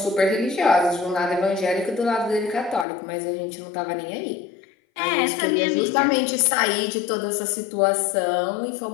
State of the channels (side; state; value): right; drops out; at 2.9 s